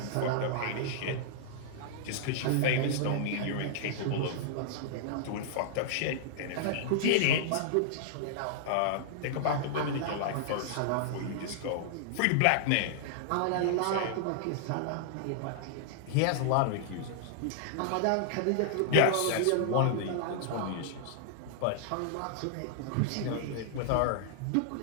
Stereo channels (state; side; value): different; both; correlation -0.01